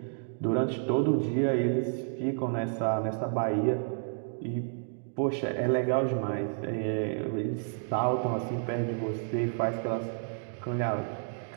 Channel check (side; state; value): left; silent; digital silence